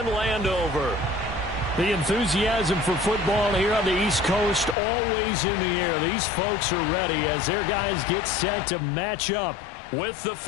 Landover. The enthusiasm for football here on the East Coast always in the air. These folks are ready as their guys get set to match up with the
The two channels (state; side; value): drops out; right; at 4.8 s